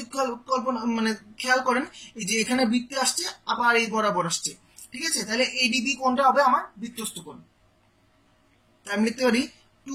কল্পনা মানে খেয়াল করেন, এই যে এখানে বৃত্তে আসছে আবার এই বরাবর আসছে, ঠিক আছে, তাহলে এডিবি কোণটা হবে আমার বৃত্তস্থ কোণ। আমি লিখতে পারি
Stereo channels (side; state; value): both; identical; correlation 1.00